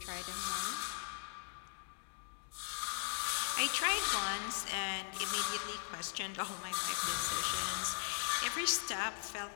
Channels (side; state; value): right; silent; 52 dB below the other